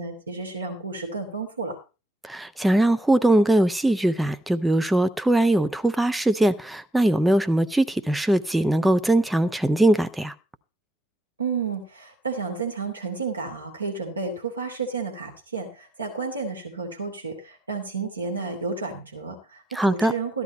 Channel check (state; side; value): normal; both; correlation 0.79